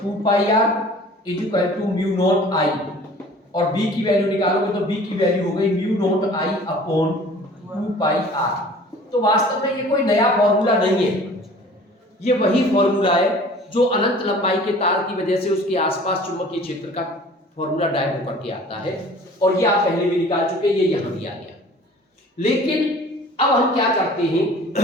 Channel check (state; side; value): normal; both; correlation 0.47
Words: 2 पाई r is equal to mu naught i, और b की वैल्यू निकालोगे तो b की वैल्यू हो गई mu naught i upon 2 pi r। तो वास्तव में ये कोई नया फॉर्मूला नहीं है, ये वही फॉर्मूला है जो अनंत लंबाई के तार की वजह से उसके आसपास चुंबकीय क्षेत्र का फॉर्मूला ड्राइव होकर के आता है, और ये आप पहले भी निकाल चुके, ये यहां दिया गया। लेकिन अब हम क्या करते हैं,